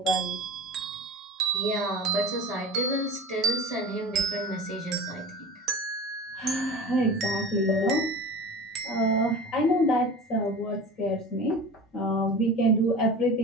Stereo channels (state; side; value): normal; both; correlation 0.34